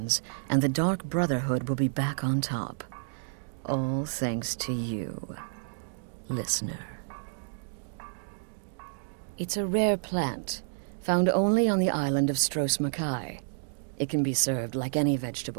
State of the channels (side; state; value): left; silent; digital silence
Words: and the Dark Brotherhood will be back on top. All thanks to you, listener. It's a rare plant, found only on the island of Stros Makai. It can be served like any